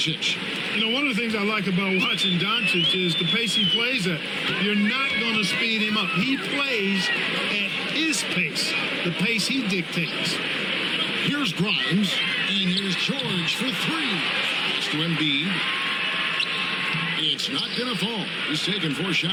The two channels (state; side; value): identical; both; correlation 1.00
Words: You know, one of the things I like about watching Doncic is the pace he plays at. You're not going to speed him up. He plays at his pace, the pace he dictates. Here's Grimes, and here's George for three. Pass to Embiid. It's not going to fall. He's taken 4